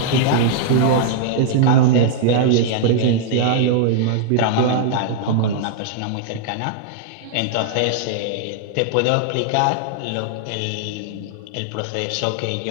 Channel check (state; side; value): different; both; correlation -0.01